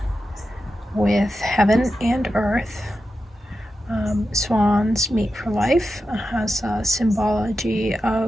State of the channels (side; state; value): both; normal; correlation 0.90